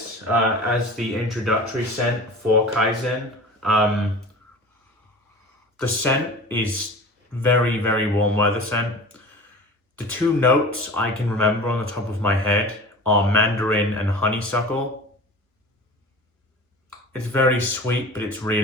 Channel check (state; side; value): normal; both; correlation 0.37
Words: as the introductory scent for Kaizen. The scent is very, very warm weather scent. The two notes I can remember on the top of my head are Mandarin and Honeysuckle. It's very sweet, but it's